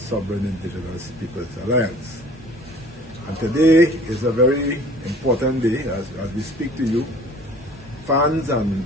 Indigenous Peoples Alliance. And today is a very important day as we speak to you, fans and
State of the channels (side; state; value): both; normal; correlation 0.50